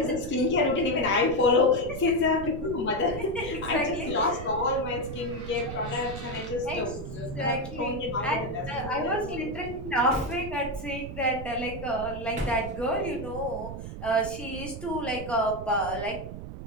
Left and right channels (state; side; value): noise; right; rumble, 9 dB below the sound